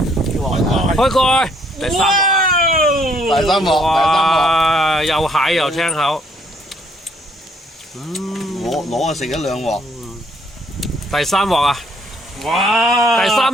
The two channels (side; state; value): both; normal; correlation 0.66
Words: 開蓋，第3鑊，第三鑊，哇！又蟹又青口，攞啊食咗2鑊，第3鑊啊！哇！第